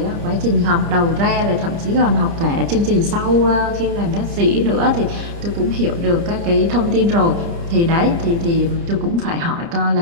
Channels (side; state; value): left; late; 29 ms